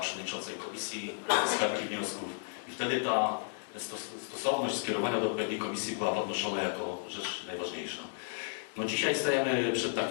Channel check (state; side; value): silent; right; digital silence